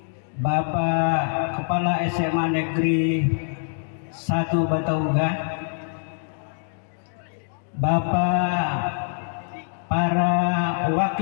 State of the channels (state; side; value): silent; right; digital silence